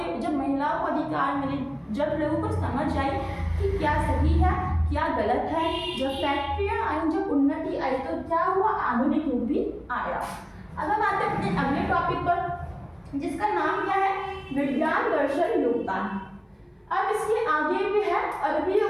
को अधिकार मिले, जब लोगों को समझ आई कि क्या सही है क्या गलत है, जब फैक्ट्रियां आई, जब उन्नति आई, तो क्या हुआ, आधुनिक युग भी आया। अब हम आते हैं अपने अगले टॉपिक पर जिसका नाम क्या है, विज्ञान दर्शन योगदान। अब इसके आगे भी है अरबियों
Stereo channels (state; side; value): identical; both; correlation 1.00